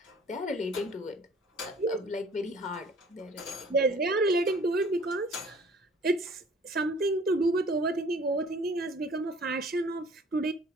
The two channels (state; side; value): normal; both; correlation 0.52